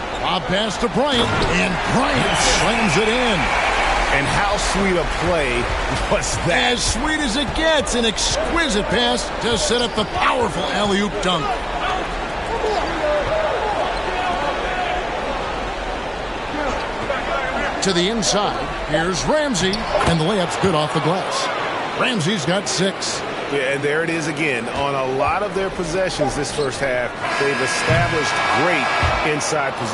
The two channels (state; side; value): identical; both; correlation 1.00